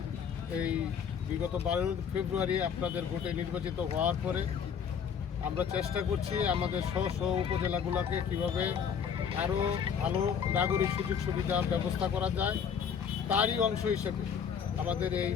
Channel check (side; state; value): right; quieter; 7.3 dB